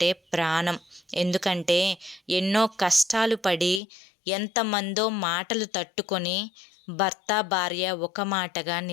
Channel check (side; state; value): right; drops out; at 3.8 s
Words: ప్రాణం. ఎందుకంటే ఎన్నో కష్టాలు పడి ఎంతమందో మాటలు తట్టుకొని భర్త భార్య ఒక మాటగా